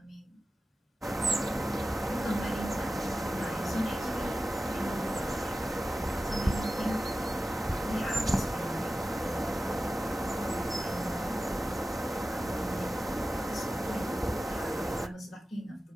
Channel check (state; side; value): normal; both; correlation 0.94